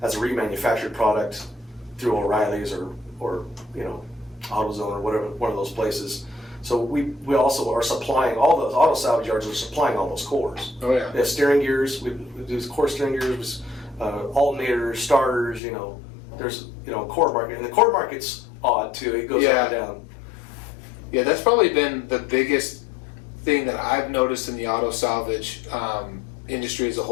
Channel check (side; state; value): right; drops out; at 15.6 s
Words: as a remanufactured product through O'Reilly's or AutoZone or whatever, one of those places. So we also are supplying all those auto salvage yards are supplying all those cores. Oh yeah. They have steering gears. We do core steering gears. Alternators, starters, there's core market, and the core market's odd too. It goes up and down. Yeah, that's probably been the biggest thing that I've noticed in the auto salvage industry as a